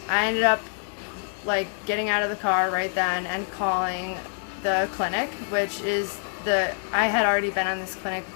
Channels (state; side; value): silent; right; digital silence